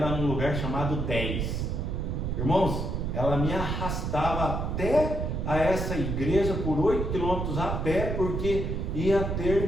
num lugar chamado 10. Irmãos, ela me arrastava até a essa igreja por 8 quilômetros a pé, porque ia ter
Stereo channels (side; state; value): right; noise; rumble, 2 dB below the sound